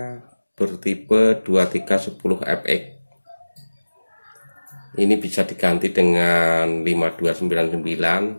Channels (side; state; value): both; inverted; correlation -1.00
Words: bertipe 2310FX. Ini bisa diganti dengan